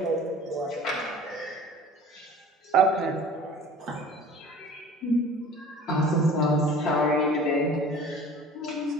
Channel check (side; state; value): both; normal; correlation 0.44